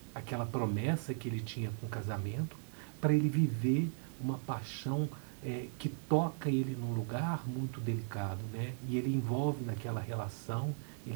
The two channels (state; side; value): silent; left; 53 dB below the other